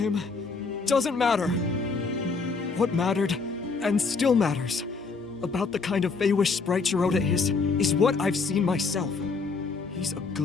doesn't matter. What mattered, and still matters, about the kind of Feywish sprite Jiroda is what I've seen myself. He's a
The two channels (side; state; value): right; quieter; 4.5 dB